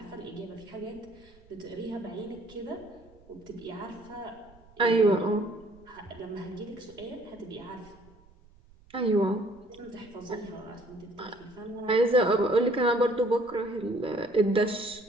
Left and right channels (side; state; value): right; noise; rumble, 26 dB below the sound